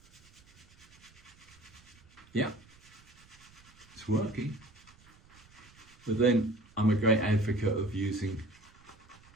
Yeah, it's working. But then I'm a great advocate of using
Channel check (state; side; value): noise; right; rumble, 26 dB below the sound